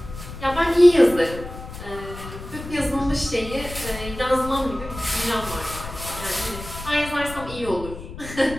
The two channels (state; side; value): noise; left; rumble, 12 dB below the sound